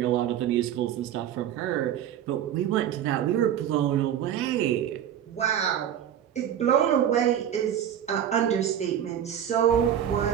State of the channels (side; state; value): left; quieter; 10.0 dB